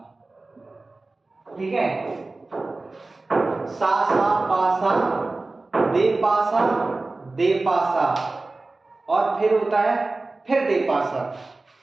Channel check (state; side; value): quieter; left; 3.3 dB